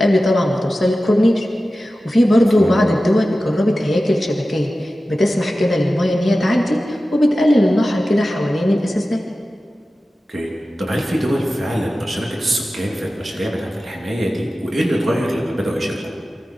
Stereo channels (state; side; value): normal; both; correlation 0.95